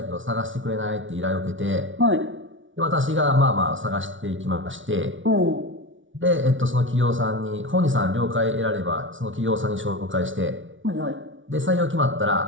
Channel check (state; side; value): late; left; 0.56 ms